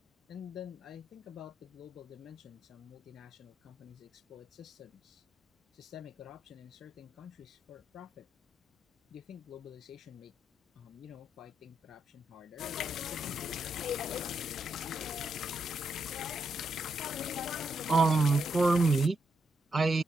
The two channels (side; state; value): both; normal; correlation 0.82